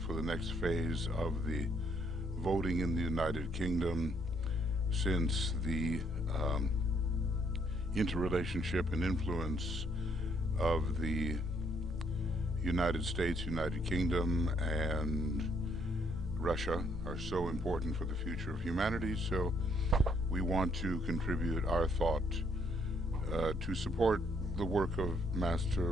the next phase of the voting in the United Kingdom, since the interrelationship and influence of the United States, United Kingdom, and Russia are so important for the future of humanity. So we want to contribute our thought to support the work of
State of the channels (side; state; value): both; normal; correlation 0.69